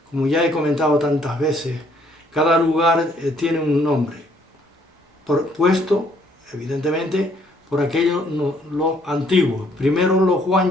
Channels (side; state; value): both; normal; correlation 0.66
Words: como ya he comentado tantas veces, cada lugar tiene un nombre, puesto evidentemente por aquellos los antiguos, primero los